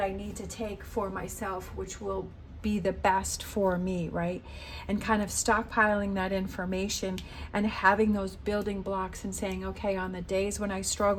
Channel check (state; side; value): identical; both; correlation 1.00